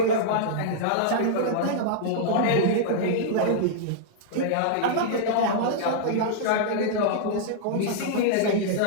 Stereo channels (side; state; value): both; different; correlation -0.02